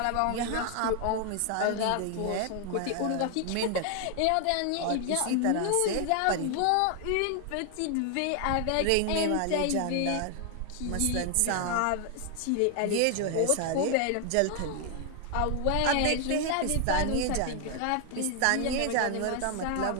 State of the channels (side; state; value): both; different; correlation 0.00